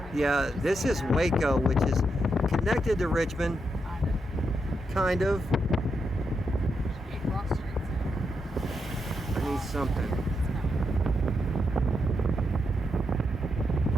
Yeah, this is Waco, which is connected to Richmond, kind of. I need something.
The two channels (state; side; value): normal; both; correlation 0.83